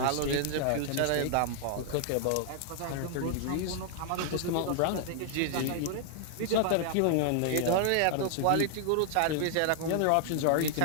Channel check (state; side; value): different; both; correlation 0.00